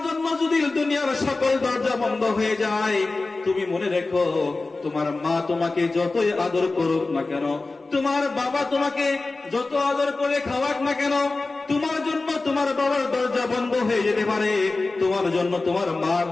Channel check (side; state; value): right; quieter; 3.5 dB